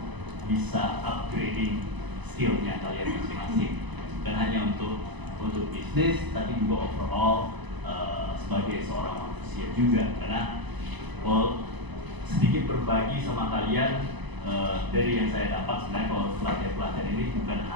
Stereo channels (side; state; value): left; late; 1.0 ms